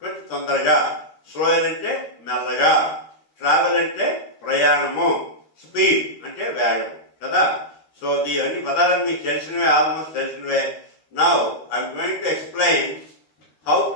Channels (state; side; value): late; right; 13 ms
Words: తొందరగా, slower అంటే మెల్లగా, travel అంటే ప్రయాణము, speed అంటే వేగం కదా. So ఇవన్నీ పదాలను మీకు తెలిసినవే, ఆల్మోస్ట్ తెలిసినవే. Now I'm going to explain how